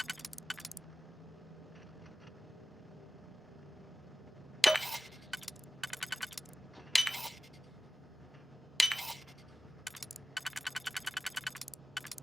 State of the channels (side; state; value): both; normal; correlation 0.97